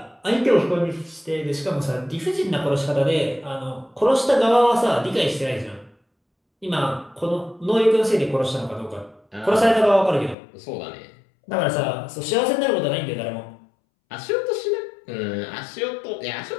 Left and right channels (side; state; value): right; drops out; at 10.4 s